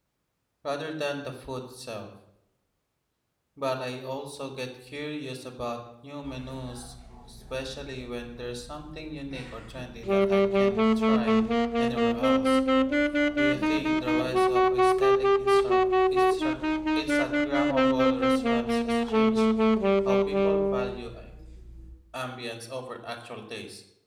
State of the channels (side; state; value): both; identical; correlation 1.00